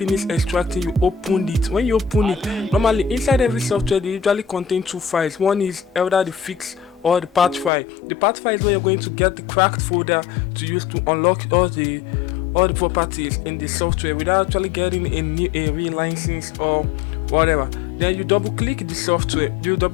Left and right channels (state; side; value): drops out; right; at 7.7 s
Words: extracting, you open it. When you open it, normally inside every software they usually contain two files. One is either the fix or the patch file. The patch file is where you're going to get the cracked folder to use to unlock all the properties in the software without actually getting a real license or whatever. Then you double click the software.